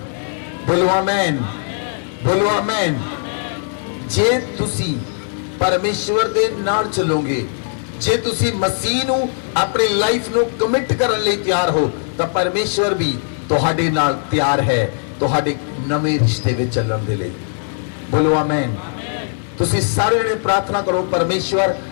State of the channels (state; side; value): silent; right; 67 dB below the other